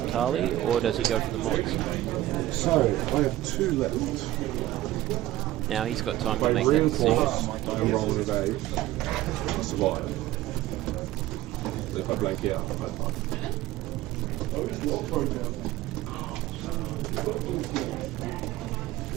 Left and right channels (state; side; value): quieter; left; 15.5 dB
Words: Tali, or does he go for the mods? So, I have 2 left. Now he's got time to make that decision. I'm rolling today. I survive. If I blank out, I fight.